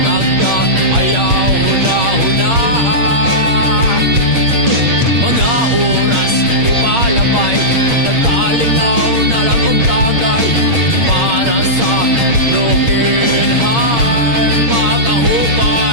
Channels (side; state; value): left; late; 8.6 ms